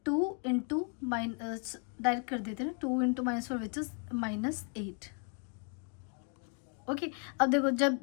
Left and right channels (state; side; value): quieter; right; 39.5 dB